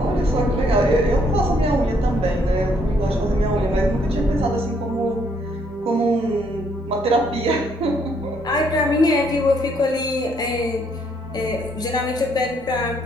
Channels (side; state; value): both; normal; correlation 0.69